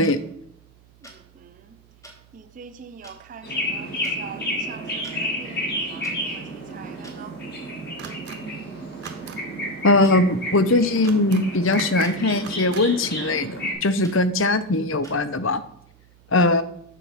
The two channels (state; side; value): noise; right; hum, 28 dB below the sound